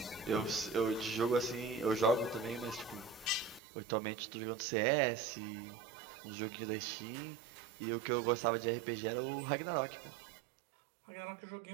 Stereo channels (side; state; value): left; drops out; at 3.6 s